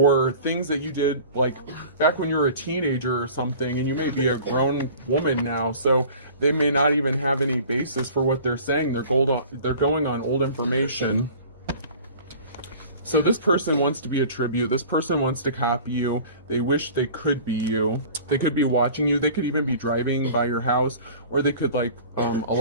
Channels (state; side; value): inverted; both; correlation -0.43